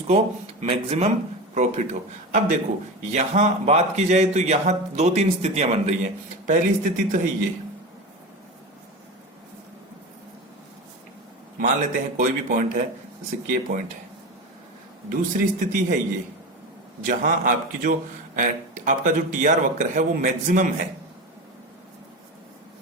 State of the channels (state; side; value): normal; both; correlation 0.25